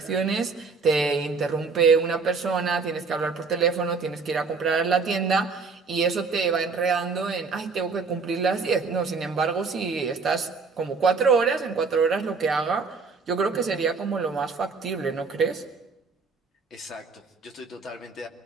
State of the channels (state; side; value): quieter; left; 4.7 dB